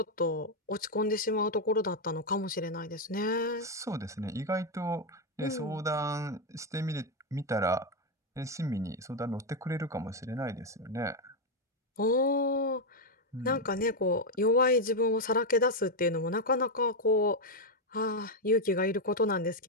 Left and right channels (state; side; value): normal; both; correlation 0.03